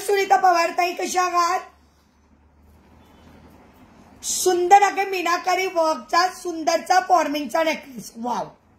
पवार ताई, कशा आहात? सुंदर आहे मीनाकारी वर्कचा सुंदरचा फॉर्मिंगचा नेकलेस. वाव,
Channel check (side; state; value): both; identical; correlation 1.00